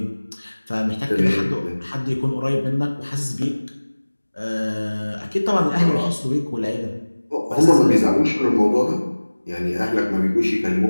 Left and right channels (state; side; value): inverted; both; correlation -1.00